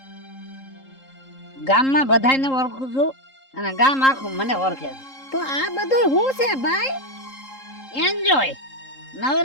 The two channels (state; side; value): late; right; 3.8 ms